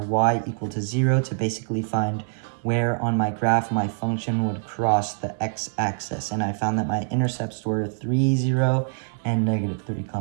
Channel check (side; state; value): left; silent; digital silence